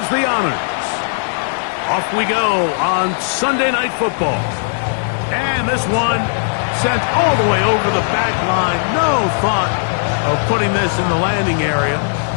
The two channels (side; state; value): right; silent; digital silence